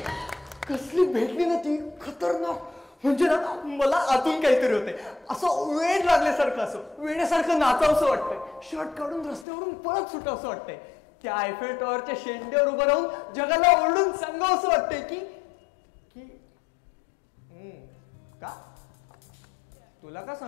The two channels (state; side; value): drops out; right; at 9.5 s